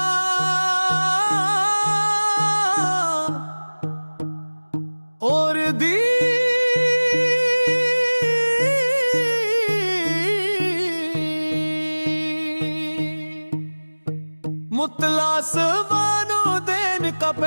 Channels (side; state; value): both; inverted; correlation -1.00